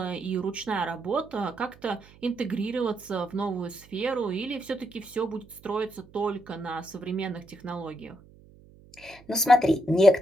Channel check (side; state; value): right; noise; hum, 24 dB below the sound